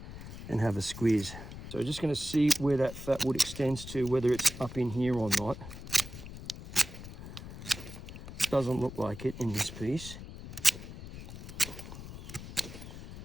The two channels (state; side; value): noise; left; rumble, 12 dB below the sound